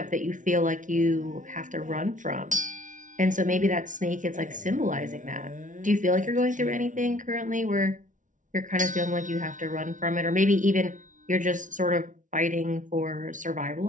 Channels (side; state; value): left; late; 0.37 ms